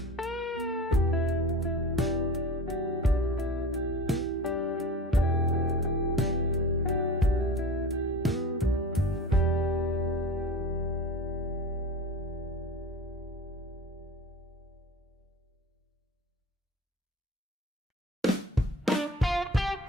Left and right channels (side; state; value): both; normal; correlation 0.36